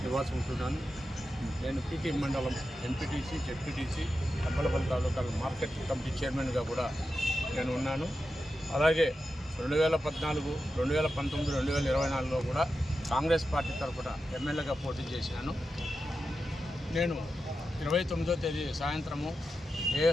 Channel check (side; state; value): both; normal; correlation 0.90